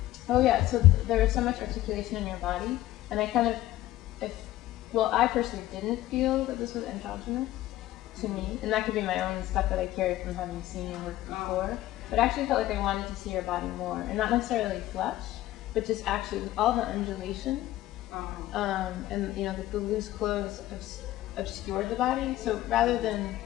Oh yeah, so there is so much articulation in your body, and I kind of, well, I personally didn't feel that this was androgynous to me, and that could be my own stuff that I carried from having seen your work before, but I actually felt like I wanted to see your body more, and not necessarily flesh, but just actually all the undulation, and you know, the loose clothes obscured the body, so rather than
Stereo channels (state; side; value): quieter; right; 15.1 dB